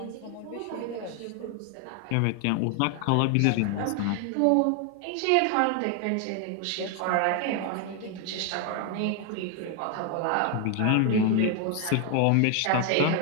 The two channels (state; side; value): different; both; correlation 0.01